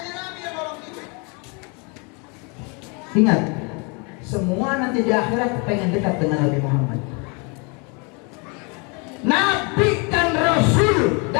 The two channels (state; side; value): quieter; right; 32.4 dB